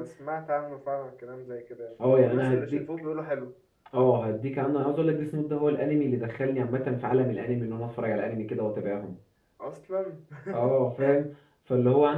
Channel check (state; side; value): identical; both; correlation 1.00